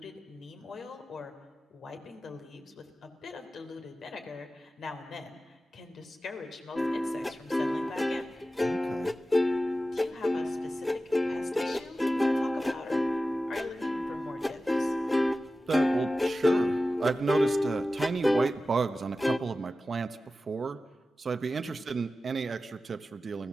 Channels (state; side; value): normal; both; correlation 0.94